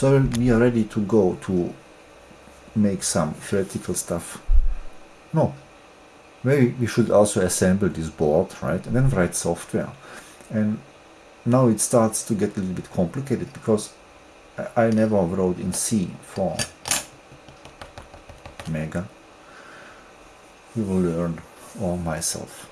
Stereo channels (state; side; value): identical; both; correlation 1.00